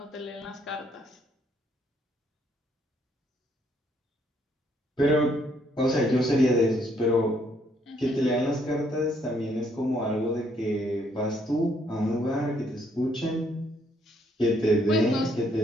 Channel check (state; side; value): normal; both; correlation 0.70